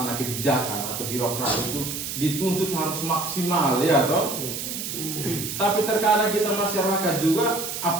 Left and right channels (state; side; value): noise; right; hiss, 5 dB below the sound